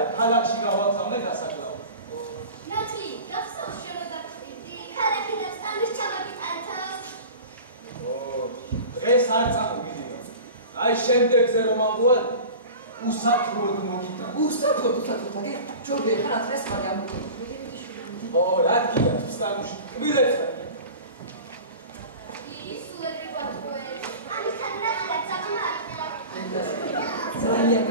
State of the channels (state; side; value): inverted; both; correlation -0.36